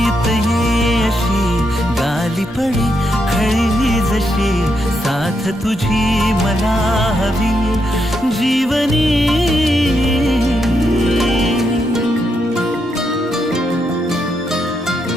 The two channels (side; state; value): both; normal; correlation 0.81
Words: ये अशी गाली पडे खळी जशी साथ तुझी मला हवी जीवनी